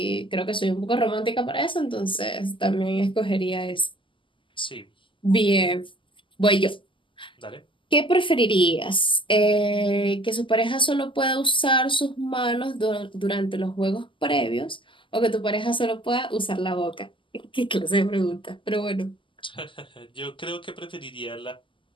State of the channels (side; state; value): right; late; 0.25 ms